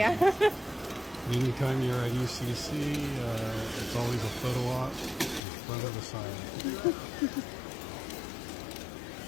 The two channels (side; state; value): right; drops out; at 5.4 s